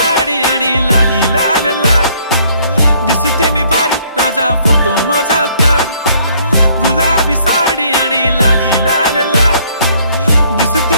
आणि लाली लाल लाल, दिसते मी भारी राजा फोटो माझा काढ. गुलाबी साडी आणि लाली लाल लाल,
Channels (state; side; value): inverted; both; correlation -0.63